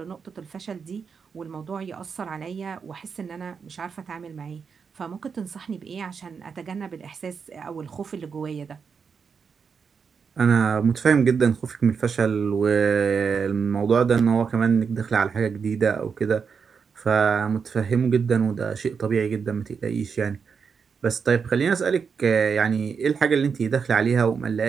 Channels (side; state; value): left; quieter; 6.0 dB